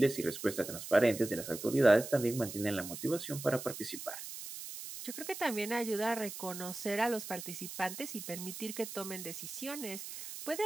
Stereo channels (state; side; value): noise; right; hiss, 9 dB below the sound